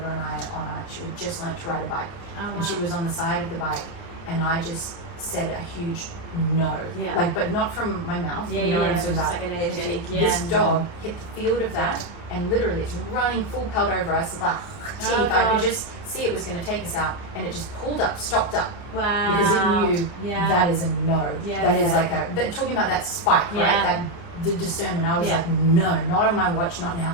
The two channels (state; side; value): late; right; 29 ms